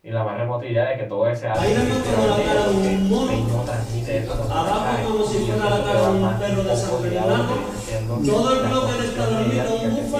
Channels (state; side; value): identical; both; correlation 1.00